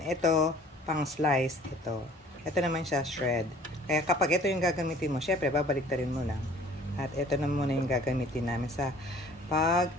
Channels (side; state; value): both; normal; correlation 0.52